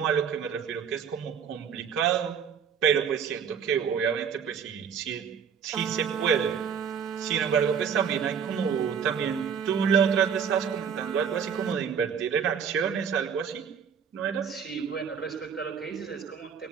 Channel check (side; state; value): left; quieter; 7.3 dB